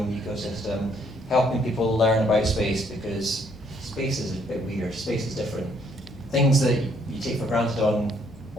ecosystem, helping people learn about space, because space is a bit weird, space is different. Things that you take for granted on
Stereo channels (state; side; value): normal; both; correlation 0.67